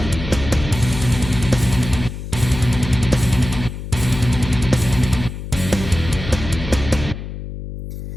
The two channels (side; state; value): left; noise; hum, 9 dB below the sound